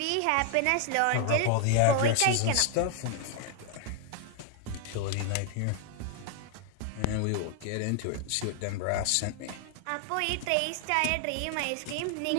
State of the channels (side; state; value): both; different; correlation 0.00